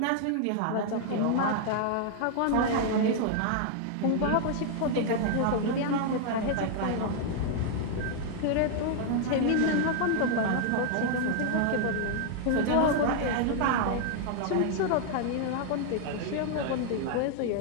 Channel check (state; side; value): different; both; correlation 0.00